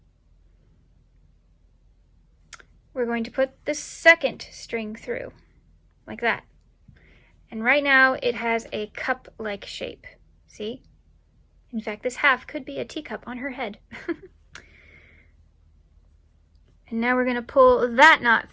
we're going to put the second string through, like that. And right now it has a cup-like shape, see? In fact, this half could be a teacup on her head. And now we're going to pull that knot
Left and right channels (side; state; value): both; identical; correlation 1.00